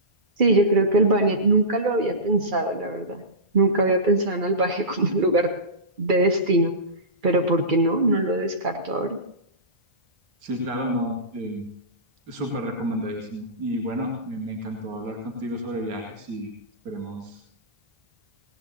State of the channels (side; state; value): left; late; 2.3 ms